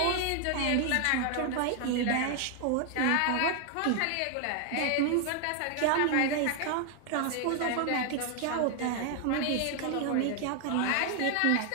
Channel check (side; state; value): both; different; correlation 0.00